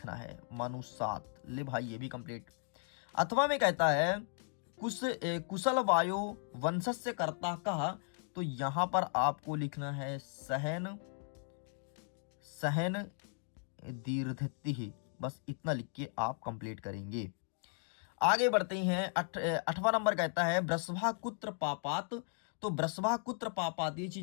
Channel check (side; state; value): right; silent; 53 dB below the other